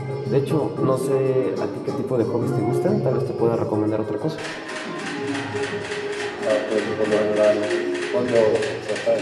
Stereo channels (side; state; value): both; identical; correlation 1.00